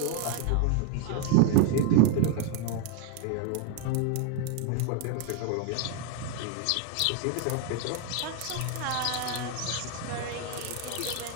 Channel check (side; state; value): both; different; correlation 0.01